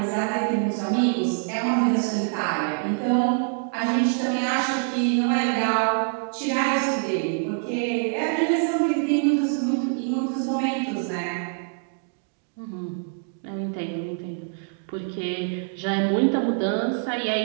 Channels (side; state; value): left; silent; 62 dB below the other